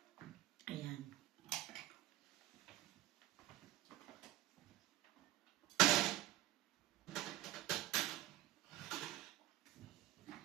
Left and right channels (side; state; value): left; quieter; 15.0 dB